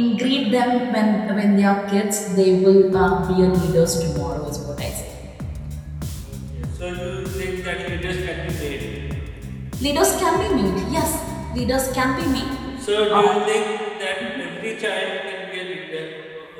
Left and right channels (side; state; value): both; identical; correlation 1.00